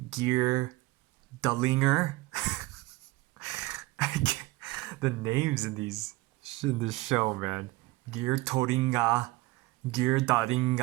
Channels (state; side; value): quieter; left; 20.8 dB